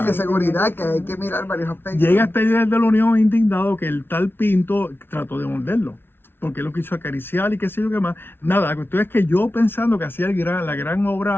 Y de seguridad, que hay que mirar varios aspectos. Llega este líder de la Unión indignado que el tal Pinto trató de morderlo, porque él lo quiso acariciar y qué sé yo qué más. Nada, la cuestión es que yo pensando que hacía la gran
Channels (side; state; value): right; late; 0.11 ms